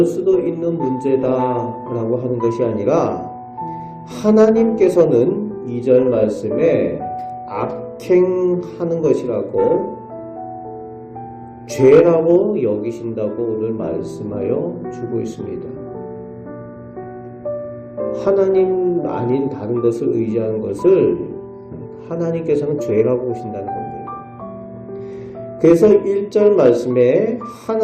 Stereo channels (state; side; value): identical; both; correlation 1.00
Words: 수도 있는 문제다라고 하는 것이 아니라 하나님께서는 2절 말씀에 악행하는 것이라고 죄라고 여기신다고 오늘 말씀하여 주고 있습니다. 하나님 아닌 다른 것을 의지하는 것을 하나님께서는 죄라고 보신다는 겁니다. 그래서 1절 말씀에